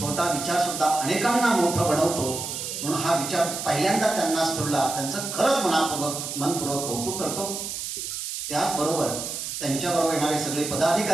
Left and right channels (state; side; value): noise; right; hiss, 5 dB below the sound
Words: विचार सुद्धा अनेकांना मोठं बनवतो. म्हणून हा विचार पहिल्यांदा त्यांना स्फुरला, त्यांचं खरंच मनपूर्वक कौतुक करतो. त्याचबरोबर त्यांच्याबरोबर येणारे सगळे